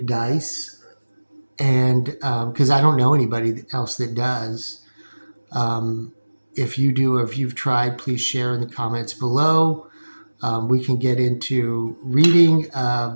Dice, and because I don't know anybody else that does. If you do, or if you've tried, please share in the comments below. We can get into reading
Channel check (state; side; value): inverted; both; correlation -1.00